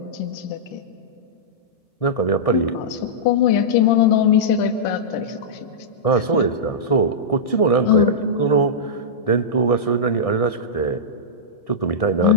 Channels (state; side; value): late; right; 1.6 ms